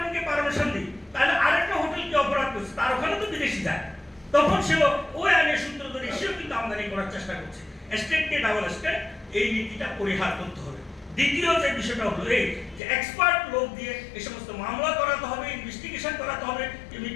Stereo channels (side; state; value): right; drops out; at 12.8 s